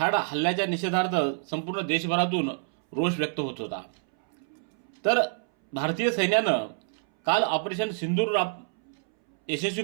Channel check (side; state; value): left; silent; 60 dB below the other